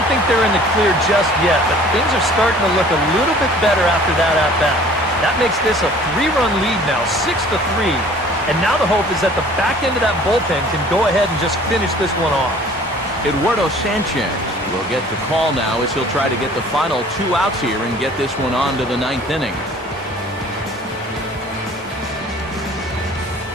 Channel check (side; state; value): both; normal; correlation 0.51